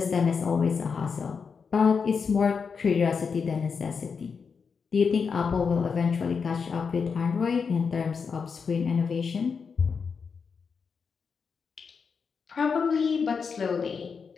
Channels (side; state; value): right; quieter; 5.7 dB